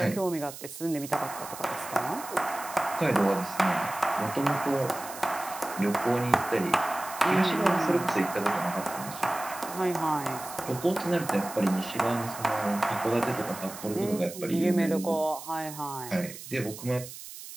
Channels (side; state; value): right; noise; hiss, 13 dB below the sound